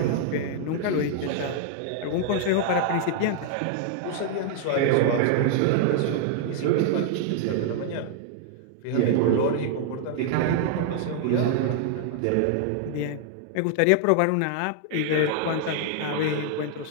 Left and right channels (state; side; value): different; both; correlation 0.00